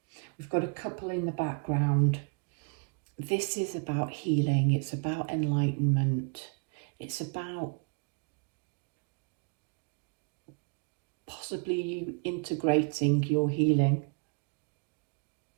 We've got a couple in the background. This is about healing, it's about enlightenment, it's about possibly you integrating your healing.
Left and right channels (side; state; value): left; quieter; 36.2 dB